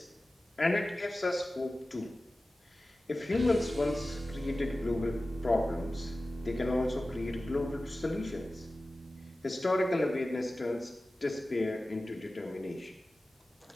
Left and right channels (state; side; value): normal; both; correlation 0.96